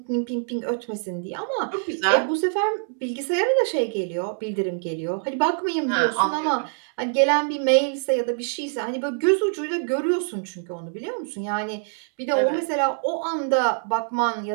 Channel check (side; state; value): left; silent; digital silence